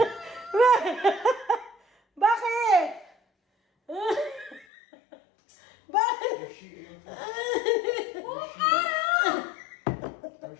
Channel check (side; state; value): right; drops out; at 4.7 s